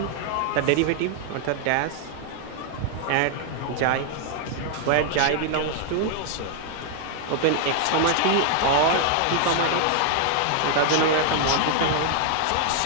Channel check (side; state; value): both; different; correlation 0.00